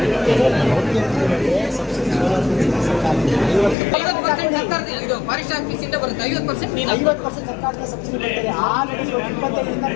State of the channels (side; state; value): right; drops out; at 3.8 s